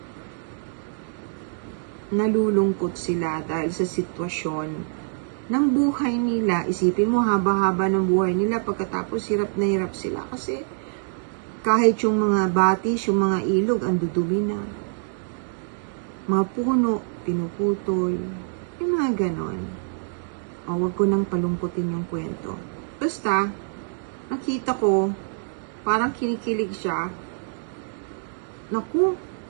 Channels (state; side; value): silent; left; digital silence